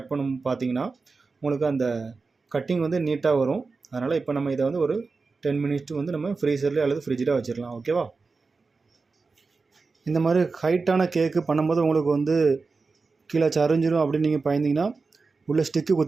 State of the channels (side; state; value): left; quieter; 4.2 dB